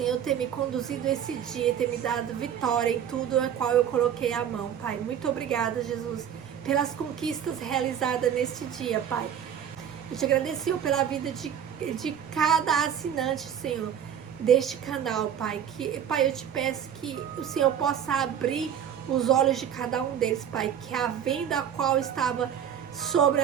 ter me conduzido esse dia, ter me dado vitória em tudo a qual eu coloquei a mão, Pai. Muito obrigada, Jesus, pelas conquistas realizadas neste dia, Pai. Eu te agradeço, Senhor, pela vida de cada assinante, Senhor, deste canal, Pai. Pai, eu te peço que o Senhor possa abrir os olhos de cada um deles, Pai. Que a venda a qual estava sobre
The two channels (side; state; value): left; quieter; 9.0 dB